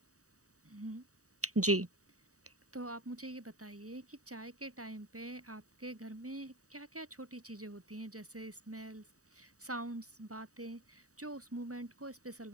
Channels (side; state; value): left; late; 0.66 ms